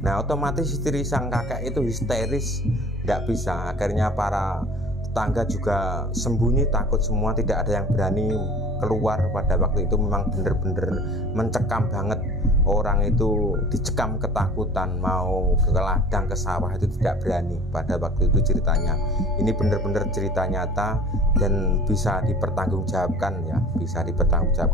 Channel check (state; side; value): normal; both; correlation 0.44